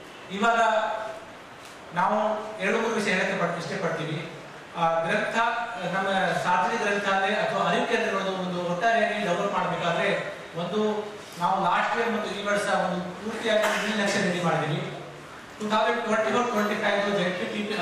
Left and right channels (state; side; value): identical; both; correlation 1.00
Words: ಇವಾಗ ನಾವು 2-3 ವಿಷಯ ಹೇಳಕ್ಕೆ ಇಷ್ಟಪಡ್ತೀವಿ. ಗ್ರಂಥ ನಮ್ಮ ಸಾರ್ವಜನಿಕ ಗ್ರಂಥಾಲಯ ಅಥವಾ ಅರಿವು ಕೇಂದ್ರಗಳು ಒಂದು ಒಟ್ಟಾರೆಯಾಗಿ ಡೆವಲಪ್ ಮಾಡಬೇಕಾದ್ರೆ ಒಂದು ನಾವು ಲಾಸ್ಟ್ ಇಯರ್ ಮತ್ತು ಈ ವರ್ಷ ಒಂದು ಪೂರ್ತಿಯಾಗಿ 1 ಲಕ್ಷ ರೆಡಿ ಮಾಡಿದ್ದೀವಿ. 2024-25 ಜೆಡ್ಪಿಟಿ